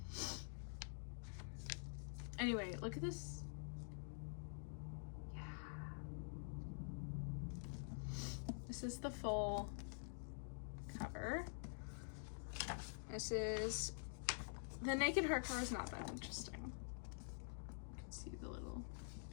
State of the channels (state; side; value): silent; right; digital silence